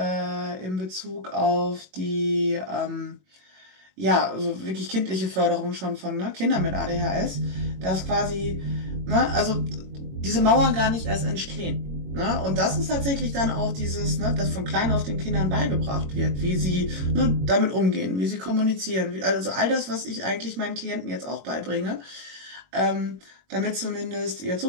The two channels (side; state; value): left; late; 22 ms